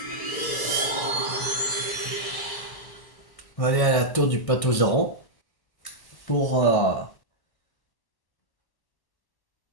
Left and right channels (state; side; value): late; right; 1.1 ms